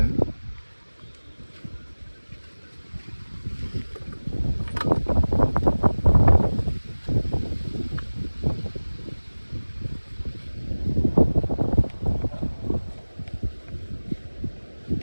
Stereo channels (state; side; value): inverted; both; correlation -1.00